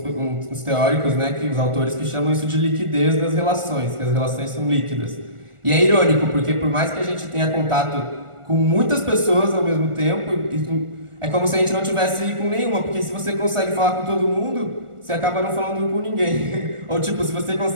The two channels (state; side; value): late; left; 1.4 ms